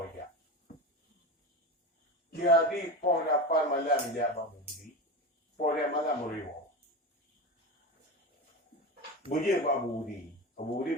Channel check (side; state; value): both; normal; correlation 0.23